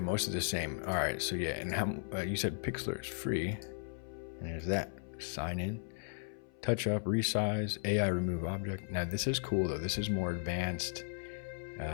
of the same. All right, so yeah, and how you said Pixlr is free, and there's that. Sign in, touch up, resize, AI remove object. Now this is cool though. This is more advanced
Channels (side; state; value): right; silent; 54 dB below the other